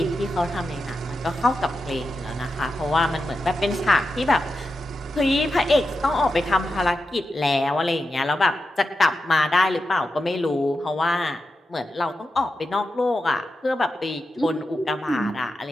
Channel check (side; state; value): both; normal; correlation 0.89